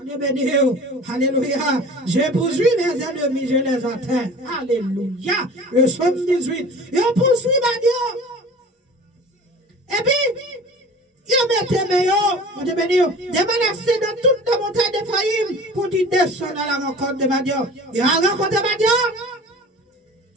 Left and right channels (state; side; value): normal; both; correlation 0.41